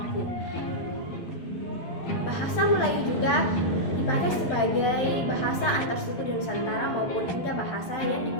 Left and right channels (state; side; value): late; right; 12 ms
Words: Bahasa Melayu juga dipakai sebagai bahasa antar suku di Nusantara maupun hingga bahasa yang